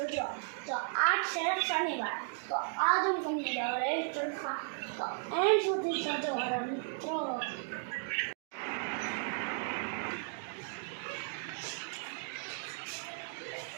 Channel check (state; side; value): silent; left; 54 dB below the other